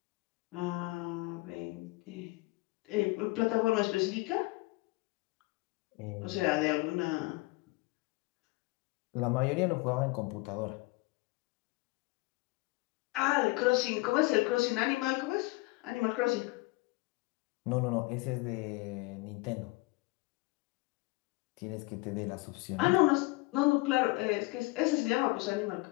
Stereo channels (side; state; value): right; quieter; 23.8 dB